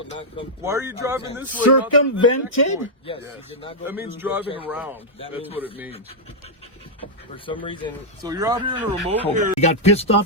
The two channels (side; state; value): both; normal; correlation -0.06